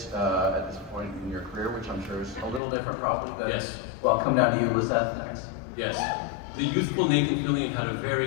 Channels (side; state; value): right; drops out; at 2.6 s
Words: at this point in your career, which I'm sure is a little different probably than. Yes. Well, come down to you, Lisette, next. Yes. The youthful Nathan Fillion had a